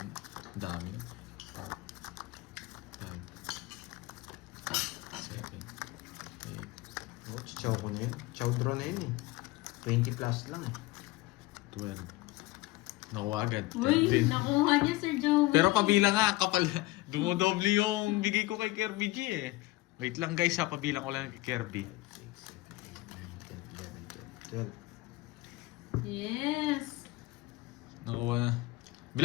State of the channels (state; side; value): quieter; right; 19.6 dB